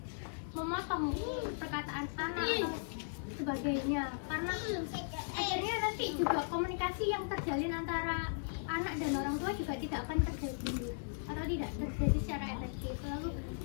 memotong perkataan anak atau sebagainya, karena akhirnya nanti juga komunikasi yang terjalin antara anak dan orang tua juga tidak akan terjadi atau tidak terjadi secara efektif. Lalu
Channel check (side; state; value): right; silent; digital silence